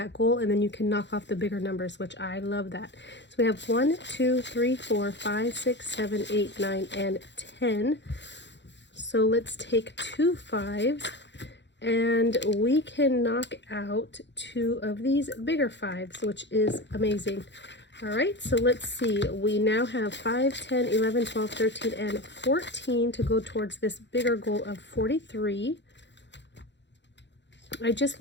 goal, and then you can knock off the bigger numbers, which I love that. So we have 1, 2, 3, 4, 5, 6, 7, 8, 9, and 10. So let's take 2 5s, and we can knock out 2 of these bigger 5s, which is amazing. All right, so let's see. We now have 5, 10, 11, 12, 13, and 14 to go towards this bigger goal of 43. I just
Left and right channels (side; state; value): right; late; 0.52 ms